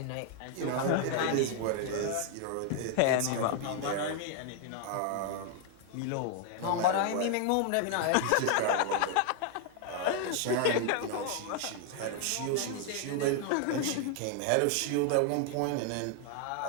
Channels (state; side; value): different; both; correlation 0.00